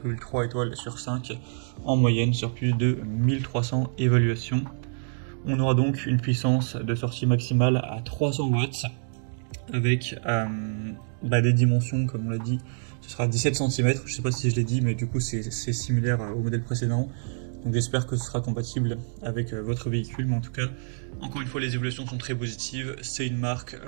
étoiles sur 5 en moyenne sur plus de 1300 évaluations. On aura donc une puissance de sortie maximale à 300 watts avec des dimensions comme on l'a dit, ce sera 17 cm, je sais pas si je l'ai dit mais du coup c'est similaire au modèle précédent. Donc j'espère que ce sera compatible avec votre véhicule, mais en tout cas, encore une fois, les évolutions sont très positives. C'est une marque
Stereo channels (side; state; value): left; silent; 60 dB below the other